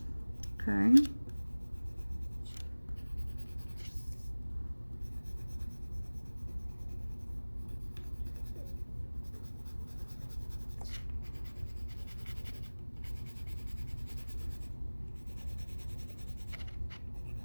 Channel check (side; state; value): both; inverted; correlation -1.00